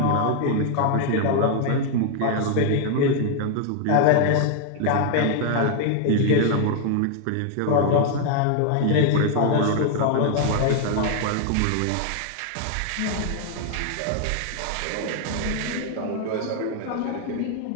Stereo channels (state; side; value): different; both; correlation 0.00